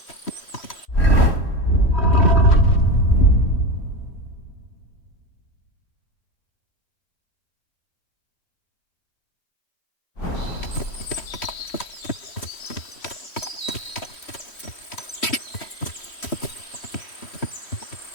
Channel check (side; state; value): right; late; 3.1 ms